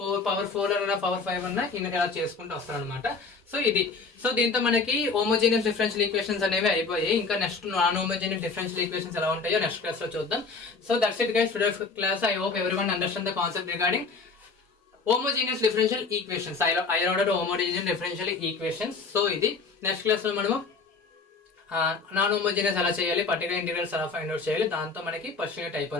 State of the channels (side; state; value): right; quieter; 4.5 dB